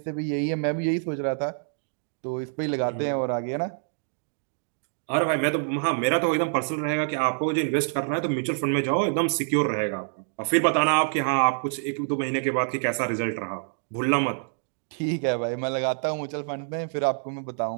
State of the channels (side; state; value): left; silent; digital silence